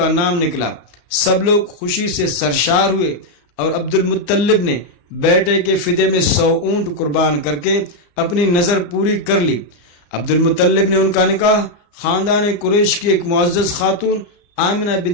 نام نکلا۔ سب لوگ خوشی سے سرشار ہوئے اور عبد المطلب نے بیٹے کے فدیے میں 100 اونٹ قربان کر کے اپنی نظر پوری کر لی۔ عبد المطلب نے ان کا نکاح خاندان قریش کی ایک معزز خاتون آمنہ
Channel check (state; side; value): late; right; 34 ms